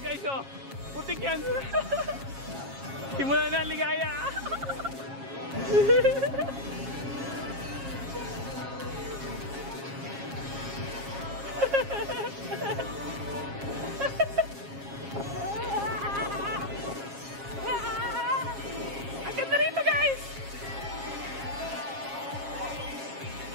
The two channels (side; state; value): left; late; 7.4 ms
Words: oh. Putik yan. Simula na ang ligaya. Ang ganda rito, guys.